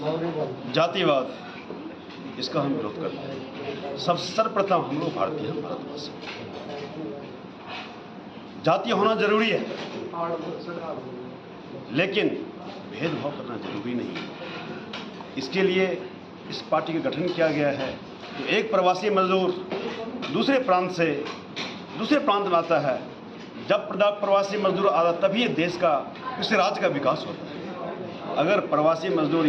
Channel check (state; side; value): identical; both; correlation 1.00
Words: जातिवाद, इसका हम विरोध करते हैं। सब सर्वप्रथम हम लोग भारतीय हैं, भारतवासी। जातीय होना जरूरी है, लेकिन भेदभाव करना जरूरी नहीं है। इसके लिए इस पार्टी का गठन किया गया है। तो एक प्रवासी मजदूर दूसरे प्रांत में आता है, जब प्रवासी मजदूर आता तभी ये देश का, किसी राज्य का विकास होता है। अगर प्रवासी मजदूर